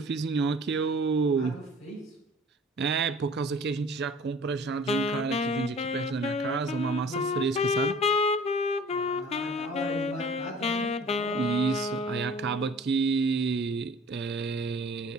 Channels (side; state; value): both; normal; correlation 0.47